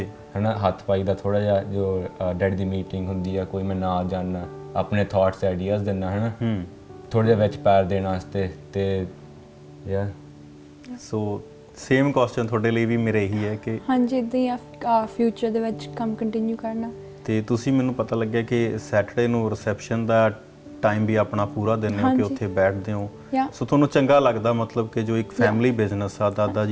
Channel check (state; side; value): identical; both; correlation 1.00